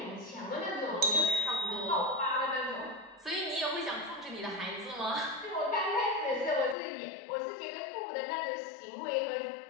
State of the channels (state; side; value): drops out; right; at 6.8 s